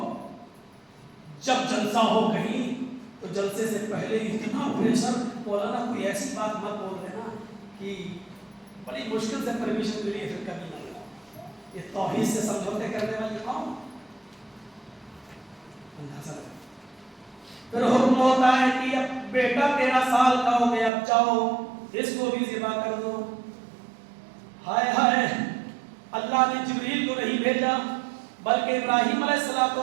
جب جلسہ ہو کہیں تو جلسے سے پہلے اتنا پریشر. مولانا کوئی ایسی بات مت بول دینا کہ بڑی مشکل سے پرمیشن ملی ہے, پھر کبھی نہیں. یہ توحید سے سمجھوتے کرنے والی قوم, اندازہ لگا. پھر حکم ہوتا ہے کہ اب بیٹا 13 سال کا ہو گیا, اب جاؤ اس کو بھی ذبح کر دو. ہائے ہائے, اللہ نے جبریل کو نہیں بھیجا بلکہ ابراہیم علیہ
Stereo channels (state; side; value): drops out; left; at 20.9 s